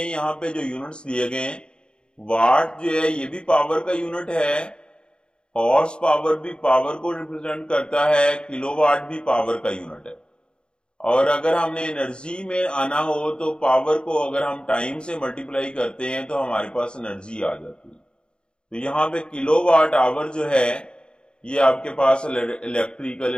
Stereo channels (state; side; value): late; right; 0.051 ms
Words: पे जो यूनिट्स दिए गए हैं, वाट जो है ये भी पावर का यूनिट है, हॉर्स पावर भी पावर को रिप्रेजेंट करता है, किलोवाट भी पावर का यूनिट है। और अगर हमने एनर्जी में आना हो तो पावर को अगर हम टाइम से मल्टीप्लाई करते हैं तो हमारे पास एनर्जी आ जाती है। तो यहाँ पे किलोवाट आवर जो है ये आपके पास इलेक्ट्रिकल